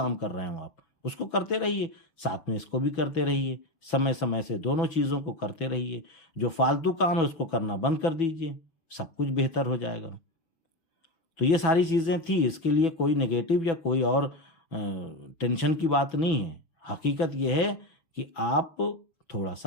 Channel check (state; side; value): late; right; 6.1 ms